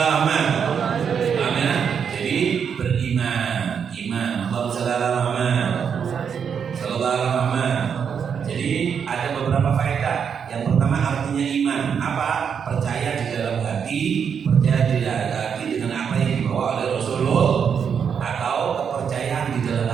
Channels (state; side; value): quieter; left; 7.1 dB